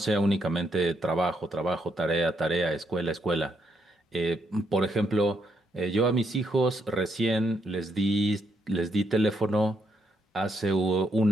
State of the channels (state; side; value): normal; both; correlation 0.77